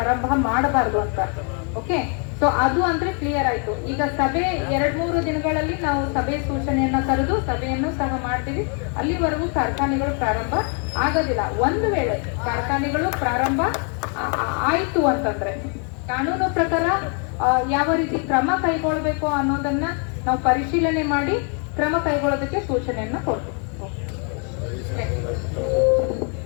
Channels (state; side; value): quieter; right; 39.3 dB